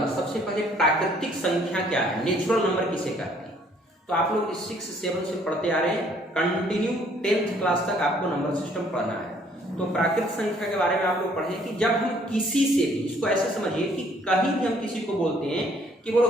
सबसे पहले प्राकृतिक संख्या क्या है, नेचुरल नंबर किसे कहते हैं। तो आप लोग 6, 7 से पढ़ते आ रहे हैं, कंटिन्यू 10th क्लास तक आपको नंबर सिस्टम पढ़ना है। तो प्राकृतिक संख्या के बारे में आप लोग पढ़ें कि जब हम किसी से भी, इसको ऐसे समझिए कि कहीं भी हम किसी को बोलते हैं कि बोलो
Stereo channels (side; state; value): both; normal; correlation 0.62